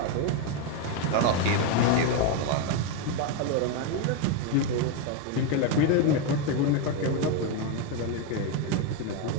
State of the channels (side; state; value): both; different; correlation 0.02